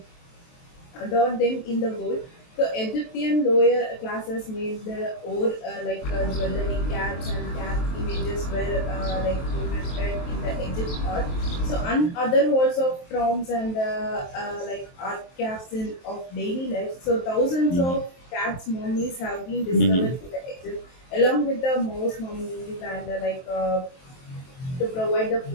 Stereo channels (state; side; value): late; right; 23 ms